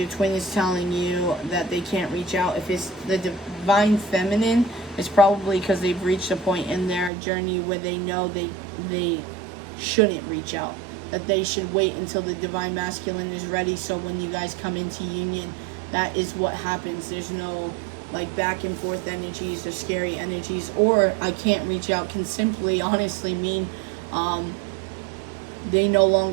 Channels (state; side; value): drops out; left; at 7.1 s